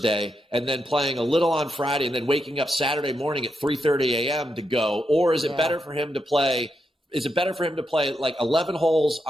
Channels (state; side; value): normal; both; correlation 0.83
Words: and then playing a little on Friday and then waking up Saturday morning at 3:30 a.m. to go? Or is it better for him to play? Is it better for him to play like 11 holes